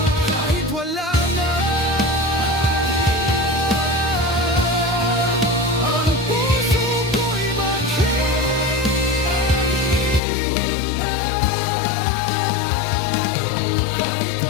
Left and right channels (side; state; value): right; drops out; at 10.2 s